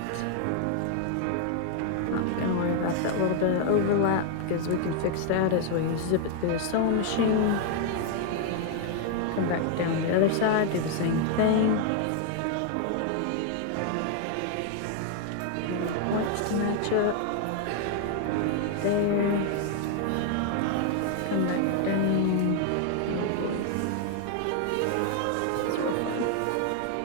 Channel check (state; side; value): different; both; correlation 0.00